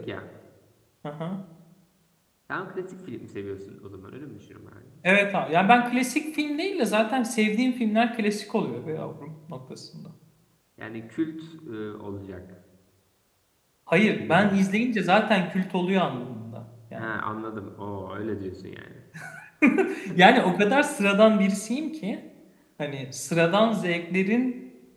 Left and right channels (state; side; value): identical; both; correlation 1.00